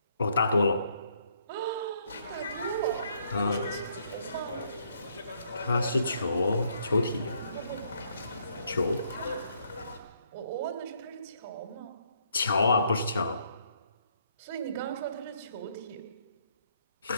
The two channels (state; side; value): inverted; both; correlation -0.70